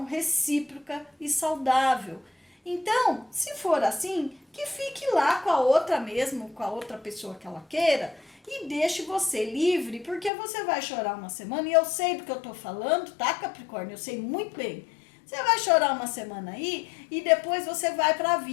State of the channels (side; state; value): right; drops out; at 10.3 s